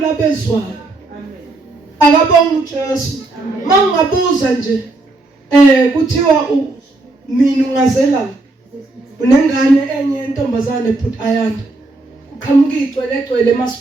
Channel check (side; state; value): left; quieter; 3.0 dB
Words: abezwayo. Akabonga uJesu. Mangabuza nje kuthiwa mina ungazela unengane enye intombazane put ayanda. Kuqhamuka igcwele